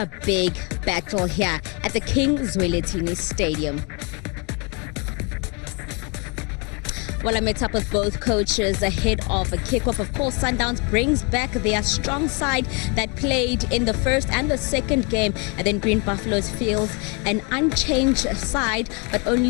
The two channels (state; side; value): quieter; right; 31.9 dB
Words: big battle here at the King Zwelithini Stadium. Well, I met up with both coaches ahead of a kickoff. Of course, Sundowns brings back their strong side that played in the first and the second game, and then Green Buffaloes feels an unchanged side, but